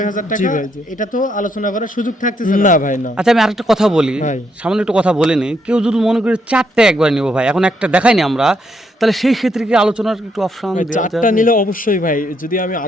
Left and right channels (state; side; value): normal; both; correlation 0.76